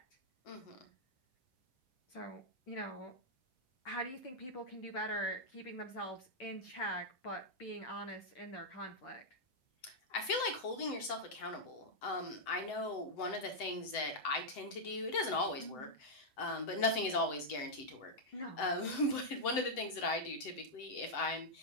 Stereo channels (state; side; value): late; right; 7.8 ms